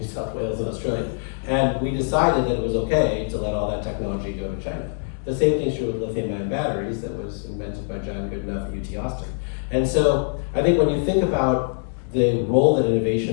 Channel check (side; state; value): right; silent; 63 dB below the other